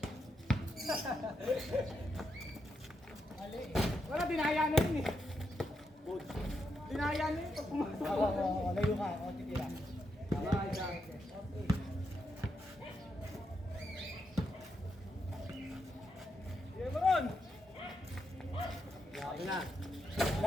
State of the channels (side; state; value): both; normal; correlation 0.82